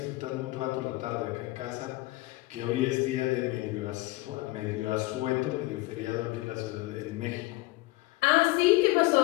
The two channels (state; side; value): quieter; right; 20.9 dB